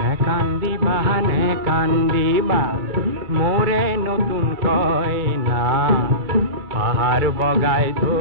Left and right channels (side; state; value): left; late; 2.3 ms